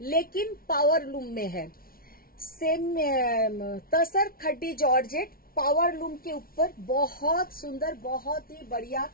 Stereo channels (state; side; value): late; right; 0.43 ms